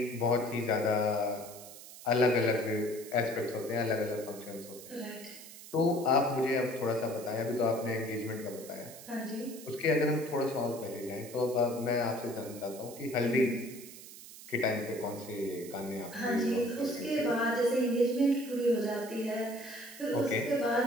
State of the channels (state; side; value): noise; right; hiss, 16 dB below the sound